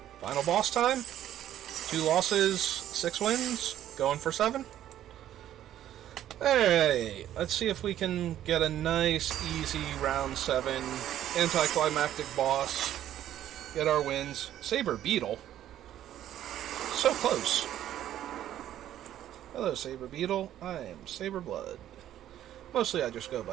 Final boss time. 2 losses, 6 wins, going for 7. Alright, let's see if we can get a nice, easy round 7 anticlimactic boss. Get our wins. Saber Beetle. So close. Hello, Saber Beetle. I am Saber Blood. Mostly I just go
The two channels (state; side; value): quieter; left; 11.8 dB